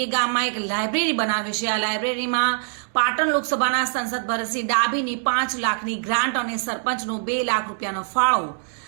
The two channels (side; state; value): left; silent; digital silence